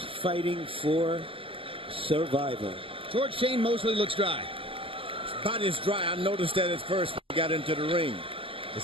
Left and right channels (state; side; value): late; left; 0.26 ms